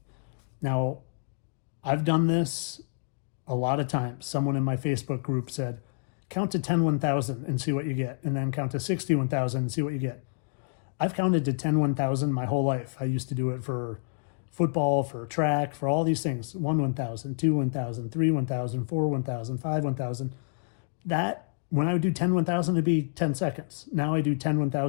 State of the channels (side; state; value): right; silent; digital silence